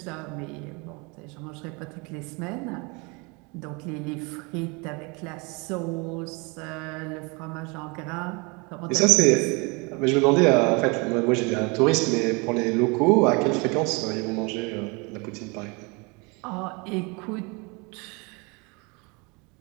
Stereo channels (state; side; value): quieter; left; 29.1 dB